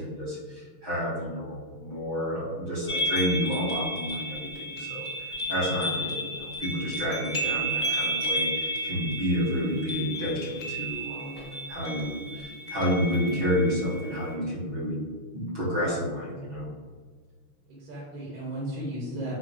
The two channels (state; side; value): late; left; 6.2 ms